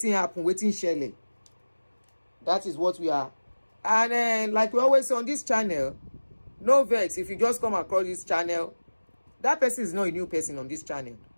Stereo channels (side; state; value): both; inverted; correlation -1.00